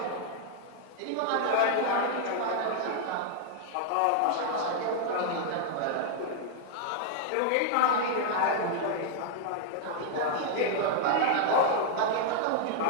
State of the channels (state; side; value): different; both; correlation 0.00